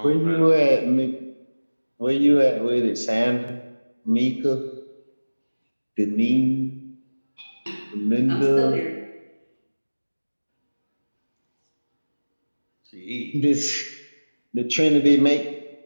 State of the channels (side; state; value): both; inverted; correlation -1.00